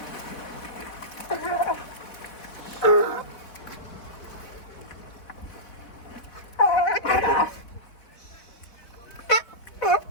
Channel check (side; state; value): right; late; 4.1 ms